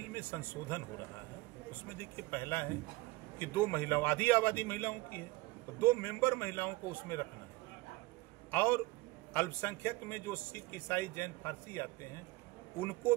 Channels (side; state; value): left; quieter; 21.7 dB